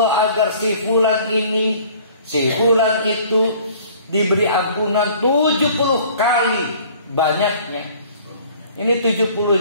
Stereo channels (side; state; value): both; inverted; correlation -0.52